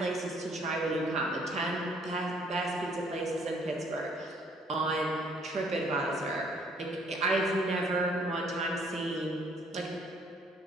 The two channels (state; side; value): normal; both; correlation 0.63